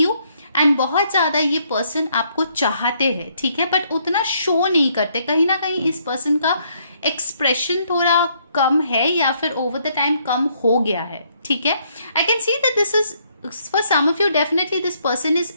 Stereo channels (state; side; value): inverted; both; correlation -0.70